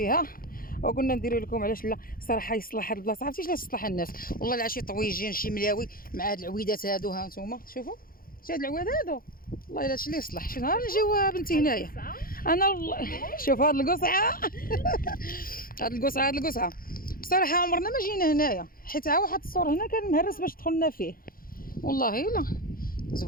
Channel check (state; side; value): late; right; 0.42 ms